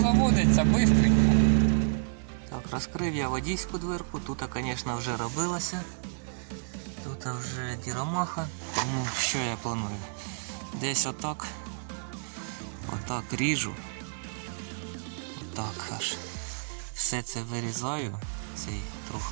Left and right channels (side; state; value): left; silent; 58 dB below the other